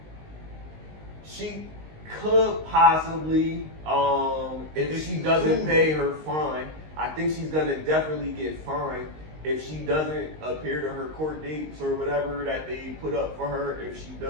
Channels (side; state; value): left; late; 19 ms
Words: She could possibly, if she doesn't pay her fine, I think she's going to definitely get fined. If she doesn't appear to her court dates or whatever that they put up for her, if she